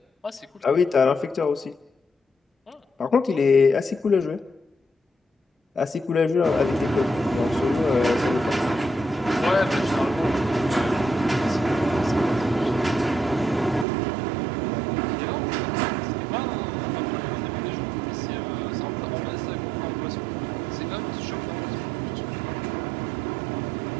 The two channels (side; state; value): left; drops out; at 13.9 s